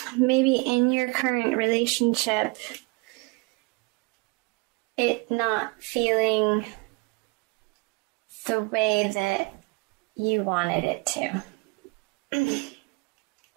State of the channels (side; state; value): left; quieter; 28.3 dB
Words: maybe in your current relationship, it not feeling the way that you wanted it to.